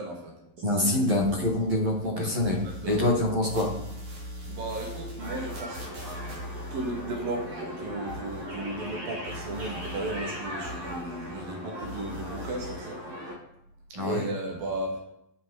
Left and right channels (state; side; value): late; left; 11 ms